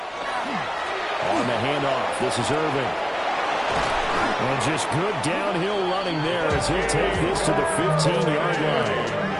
On the handoff, this is Irvin. And just good downhill running there as he'll take this to the 15-yard line.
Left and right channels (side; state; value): both; identical; correlation 1.00